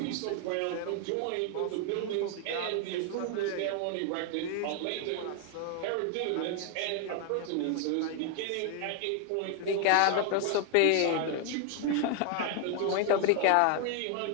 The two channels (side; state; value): both; different; correlation 0.00